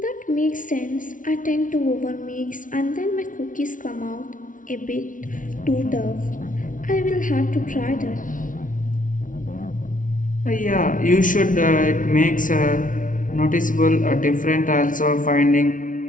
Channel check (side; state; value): right; late; 0.38 ms